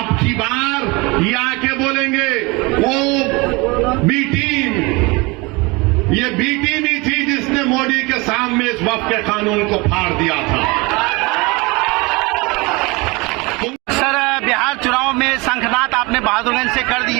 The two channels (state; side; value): quieter; left; 25.5 dB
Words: की बार ये आके बोलेंगे वो बी टीम, ये बी टीम ही थी जिसने मोदी के सामने इस वक्त के कानून को फाड़ दिया था। सर, बिहार चुनाव में शंखनाद आपने बहादुरगंज से कर